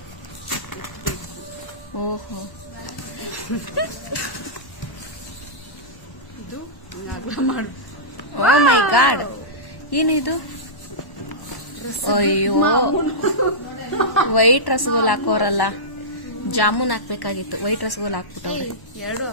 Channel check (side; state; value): right; late; 1.1 ms